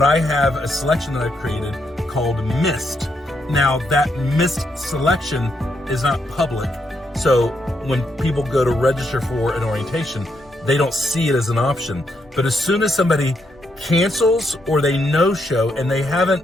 I have a selection that I've created called Missed. Now that missed selection is not public. So when people go to register for an orientation, they don't see it as an option. But as soon as somebody cancels or they no-show and they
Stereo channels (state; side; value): normal; both; correlation 0.79